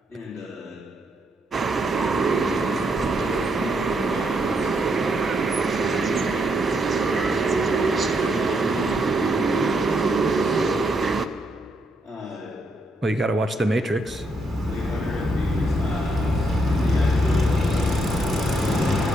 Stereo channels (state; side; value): normal; both; correlation 0.77